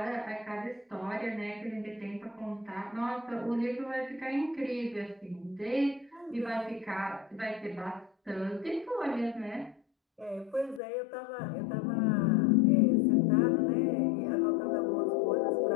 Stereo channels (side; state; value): right; drops out; at 10.8 s